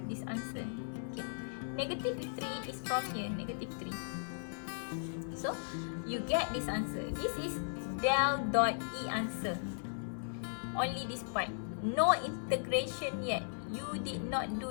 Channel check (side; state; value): right; silent; digital silence